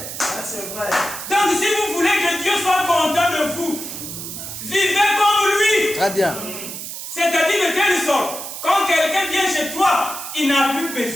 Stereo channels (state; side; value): noise; right; hiss, 8 dB below the sound